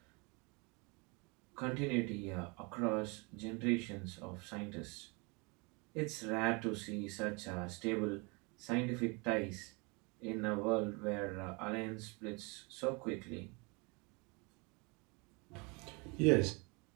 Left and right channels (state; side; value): quieter; left; 29.8 dB